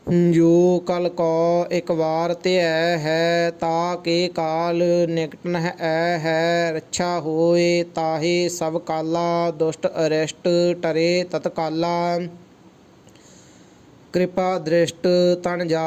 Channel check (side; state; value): both; identical; correlation 1.00